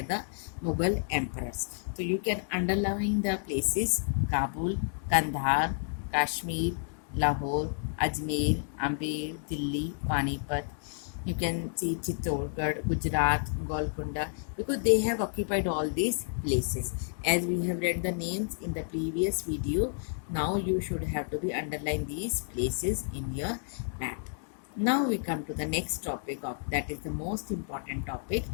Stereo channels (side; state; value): right; silent; digital silence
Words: the Mughal emperors. So you can underline the places: Kabul, Kandahar, Kashmir, Lahore, Ajmer, Amber, Delhi, Panipat. You can see Chittorgarh, Gujarat, Golconda, because they have occupied all these places. As we have read the names in the previous video, now you should have to be underline these places in your map. Now we come to the next topic of that is the most important topic,